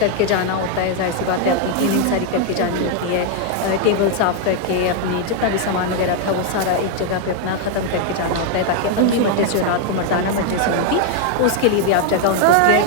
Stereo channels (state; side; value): different; both; correlation 0.00